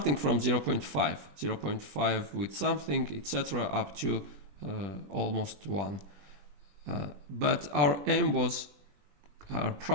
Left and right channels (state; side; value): late; left; 21 ms